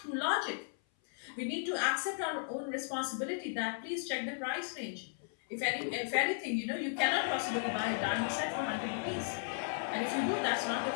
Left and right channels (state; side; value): silent; right; 54 dB below the other